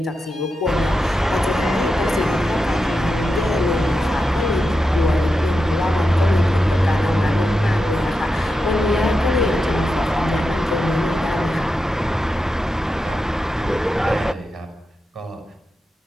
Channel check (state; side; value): normal; both; correlation 0.89